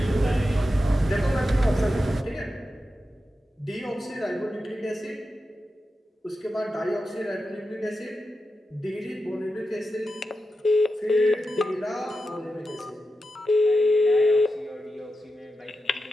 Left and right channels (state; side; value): normal; both; correlation 0.90